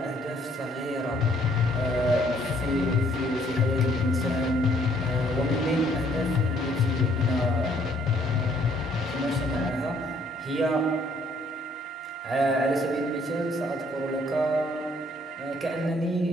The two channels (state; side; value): normal; both; correlation 0.64